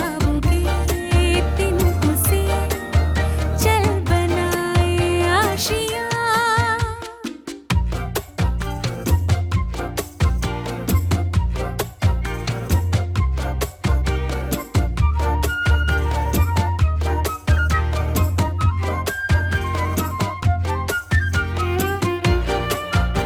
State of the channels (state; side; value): identical; both; correlation 1.00